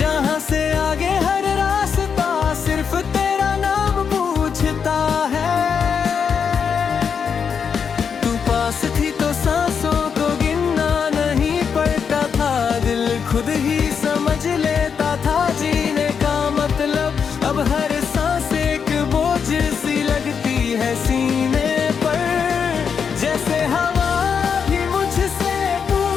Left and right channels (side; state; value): right; quieter; 6.6 dB